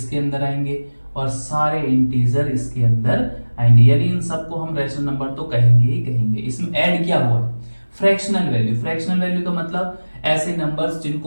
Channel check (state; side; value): inverted; both; correlation -1.00